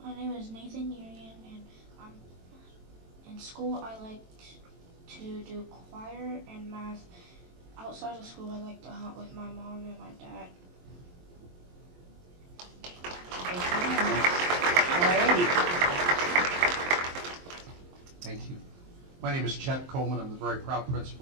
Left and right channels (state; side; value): late; left; 23 ms